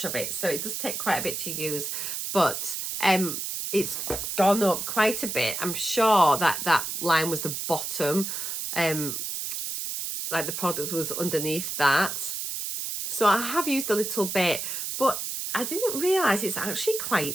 of it, so it does take quite a bit to use, but it's gone up quite a bit. I'm sure that that line was the bottom, like the product was underneath that, so I have used a little bit, but I didn't realise it's actually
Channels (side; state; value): right; noise; hiss, 4 dB below the sound